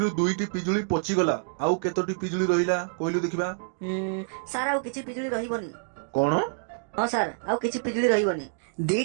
2ଟି ପିଜୁଳି ପଚିଗଲା, ଆଉ କେତୋଟି ପିଜୁଳି ରହିଲା କହିଲୁ ଦେଖିବା? ସାର୍ ଆଉ କିଛି ପିଜୁଳି ରହିବନି। କଣ? ହଁ ସାର୍ ଆଉ କିଛି ପିଜୁଳି ରହିବନି।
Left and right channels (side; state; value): left; silent; digital silence